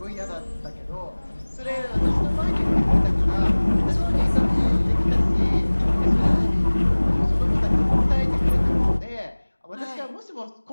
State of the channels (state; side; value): inverted; both; correlation -1.00